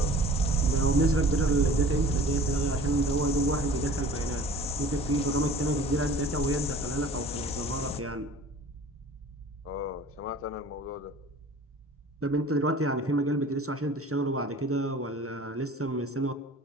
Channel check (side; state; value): both; normal; correlation 0.45